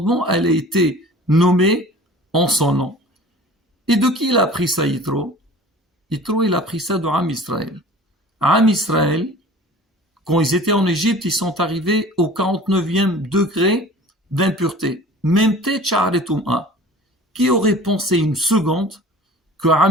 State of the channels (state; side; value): normal; both; correlation 0.43